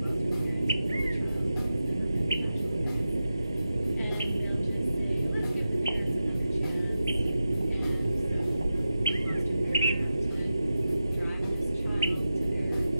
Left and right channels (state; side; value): inverted; both; correlation -0.92